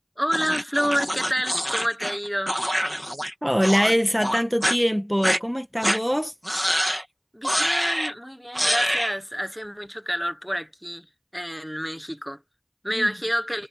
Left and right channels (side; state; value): both; identical; correlation 1.00